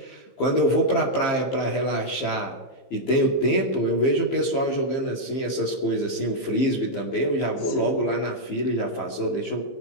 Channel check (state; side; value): late; right; 15 ms